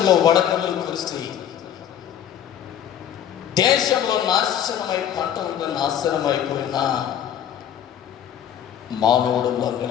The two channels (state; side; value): quieter; right; 9.9 dB